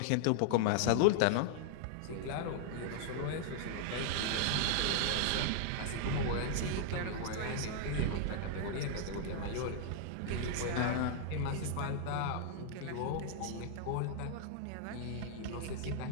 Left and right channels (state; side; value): different; both; correlation -0.01